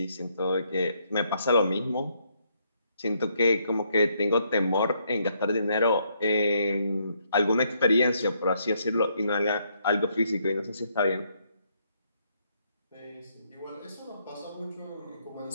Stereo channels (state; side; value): inverted; both; correlation -0.73